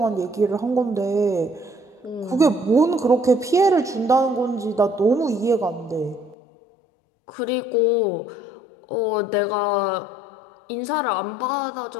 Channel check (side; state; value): right; drops out; at 6.4 s